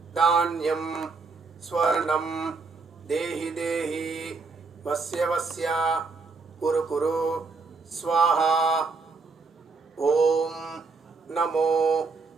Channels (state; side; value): quieter; left; 4.3 dB